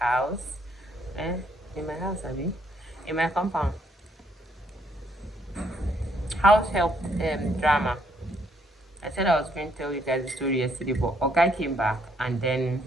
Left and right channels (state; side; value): normal; both; correlation 0.70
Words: In my house, I mean, in my compound. House help drama. I said I was going to tell you guys the story yesterday, but Oga came back, and then